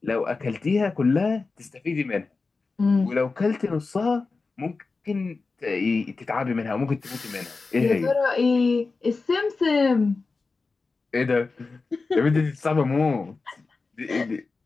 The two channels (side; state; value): right; quieter; 4.1 dB